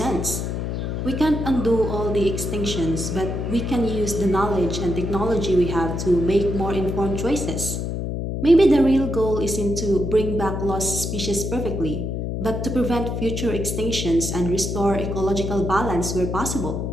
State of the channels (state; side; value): noise; left; hum, 3 dB below the sound